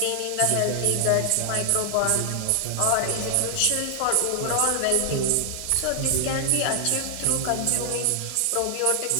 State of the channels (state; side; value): different; both; correlation 0.00